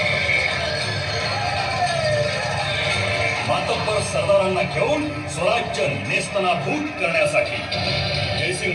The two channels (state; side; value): identical; both; correlation 1.00